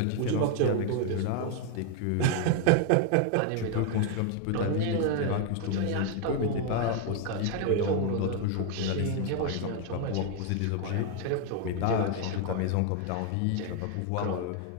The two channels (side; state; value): both; different; correlation 0.01